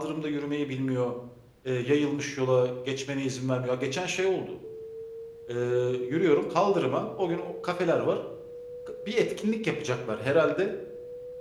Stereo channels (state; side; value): identical; both; correlation 1.00